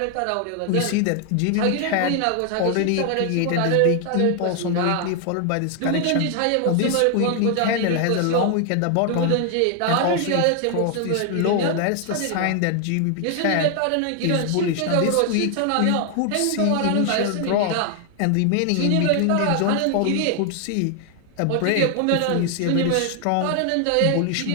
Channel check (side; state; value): both; different; correlation 0.00